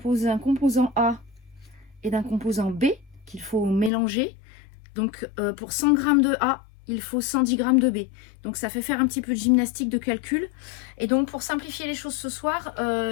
d'un composant A et d'un composant B qu'il faut mélanger. Donc pour 100 g de A, il faut 110 g de B. Donc ça fait faire un petit peu de gymnastique de calcul. Et donc pour simplifier les choses ce soir,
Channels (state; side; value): drops out; right; at 3.9 s